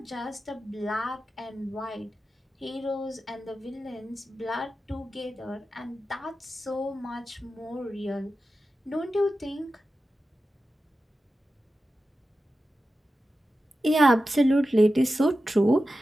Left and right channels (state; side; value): normal; both; correlation 0.93